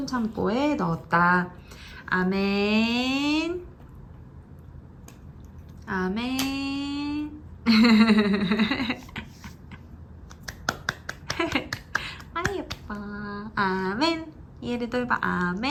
창고에 넣었다. 아멘. 아멘. 아 예뻐. 아멘. 얘를 봐.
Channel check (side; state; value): both; identical; correlation 1.00